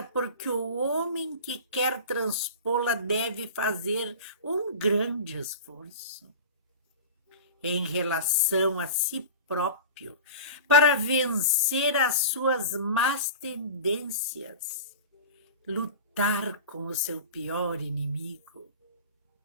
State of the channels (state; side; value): inverted; both; correlation -0.34